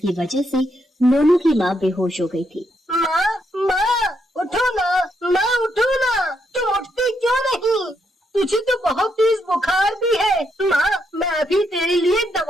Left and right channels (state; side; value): normal; both; correlation 0.78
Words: वजह से मोनू की माँ बेहोश हो गई थी। माँ, उठो ना, माँ उठो ना, तुम उठती क्यों नहीं? तुझे तो बहुत तेज बुखार भी है। माँ, मैं अभी तेरे लिए